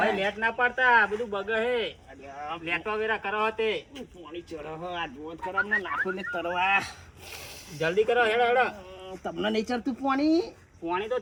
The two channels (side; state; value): both; identical; correlation 1.00